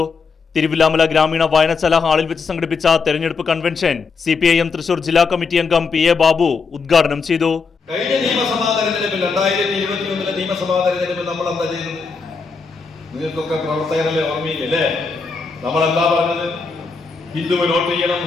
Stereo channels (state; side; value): quieter; right; 4.8 dB